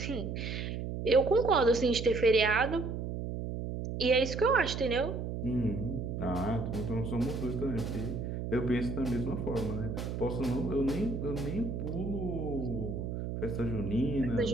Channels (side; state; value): right; noise; hum, 4 dB below the sound